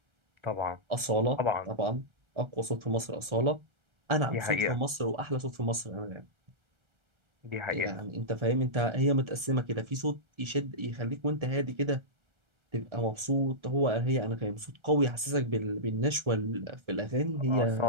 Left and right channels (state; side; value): late; left; 1.3 ms